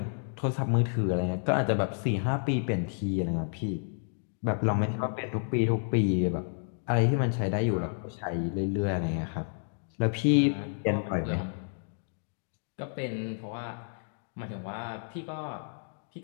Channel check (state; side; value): silent; right; digital silence